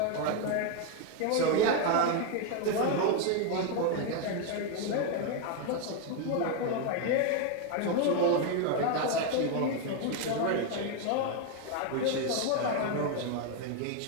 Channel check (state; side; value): different; both; correlation 0.01